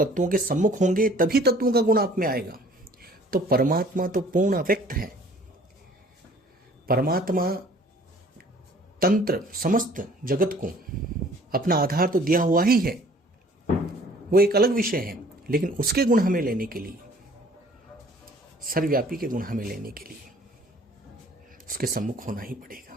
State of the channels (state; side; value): normal; both; correlation 0.54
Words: के सम्मुख होंगे तभी तत्वों का गुण आप में आएगा। तो परमात्मा तो पूर्ण अव्यक्त है, परमात्मा तंत्र समस्त जगत को अपना आधार तो दिया हुआ ही है, वो एक अलग विषय है, लेकिन उसके गुण हमें लेने के लिए, सर्वव्यापी के गुण हमें लेने के लिए उसके सम्मुख होना ही